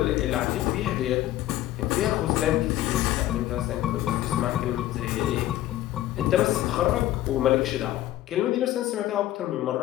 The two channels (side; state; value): right; quieter; 14.2 dB